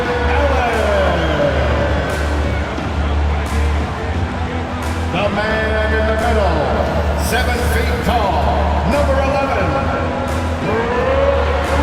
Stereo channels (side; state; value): both; identical; correlation 1.00